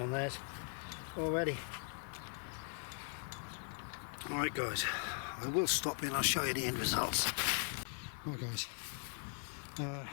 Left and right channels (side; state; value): right; silent; 51 dB below the other